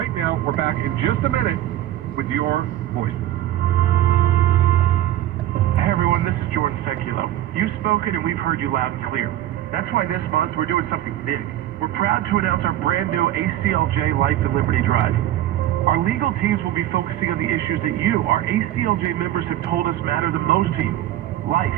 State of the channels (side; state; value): left; quieter; 13.2 dB